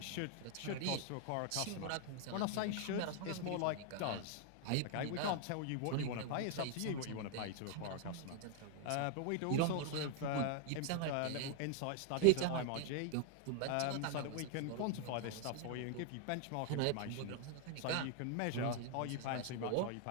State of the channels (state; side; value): different; both; correlation 0.00